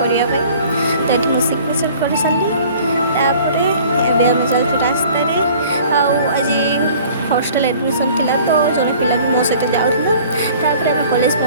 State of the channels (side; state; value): both; inverted; correlation -0.50